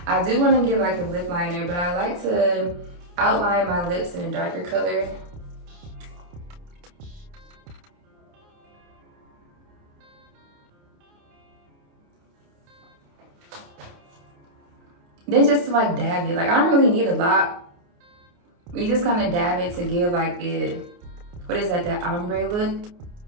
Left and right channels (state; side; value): late; left; 29 ms